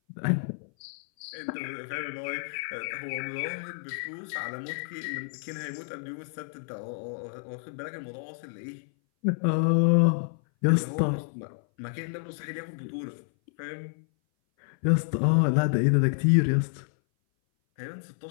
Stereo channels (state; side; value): silent; right; 58 dB below the other